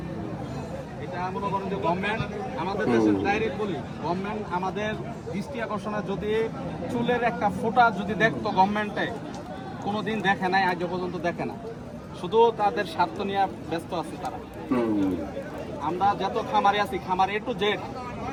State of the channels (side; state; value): both; identical; correlation 1.00